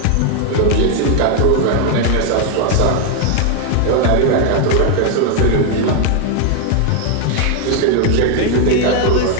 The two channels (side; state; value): both; different; correlation 0.00